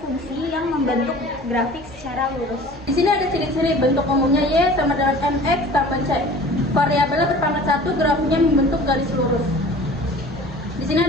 yang membentuk grafik secara lurus. Di sini ada ciri-ciri bentuk umumnya Y sama dengan MX tambah C. Variabelnya berpangkat 1, grafiknya membentuk garis lurus. Di sini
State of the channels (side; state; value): both; normal; correlation 0.44